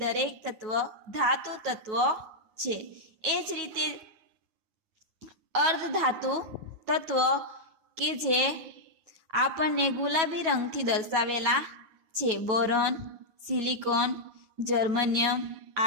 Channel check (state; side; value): late; left; 9.3 ms